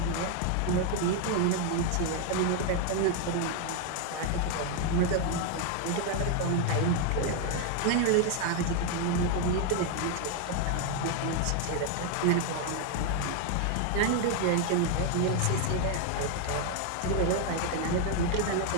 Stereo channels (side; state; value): both; different; correlation 0.00